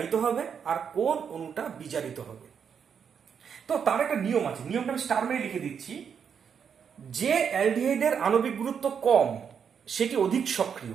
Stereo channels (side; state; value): left; quieter; 7.2 dB